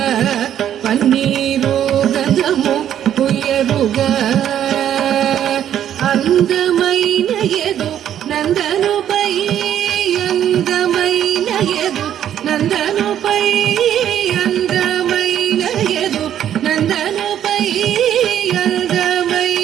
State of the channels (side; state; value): left; quieter; 10.4 dB